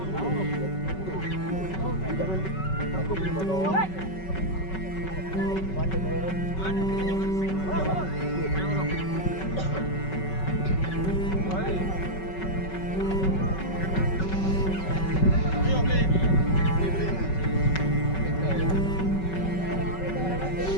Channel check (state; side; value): late; right; 5.3 ms